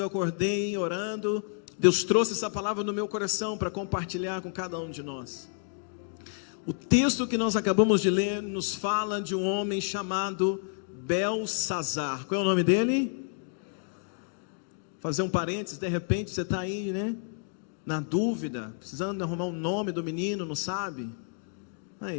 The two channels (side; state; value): right; silent; 58 dB below the other